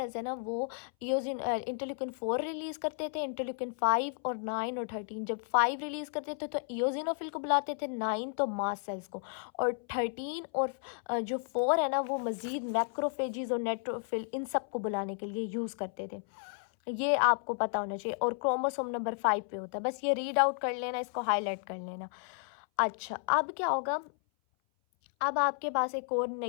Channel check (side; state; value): right; silent; 56 dB below the other